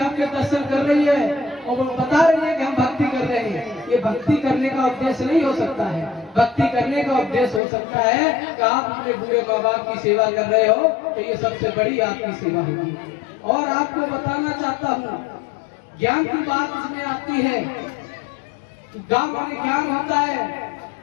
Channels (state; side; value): drops out; right; at 7.6 s